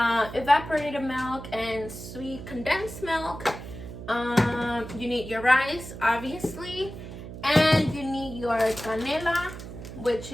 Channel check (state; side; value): noise; right; hum, 11 dB below the sound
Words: milk and sweet condensed milk. You need your rice, obviously, and you need your canela, which